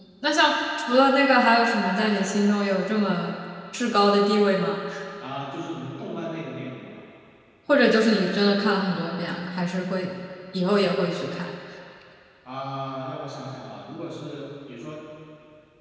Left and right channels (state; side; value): identical; both; correlation 1.00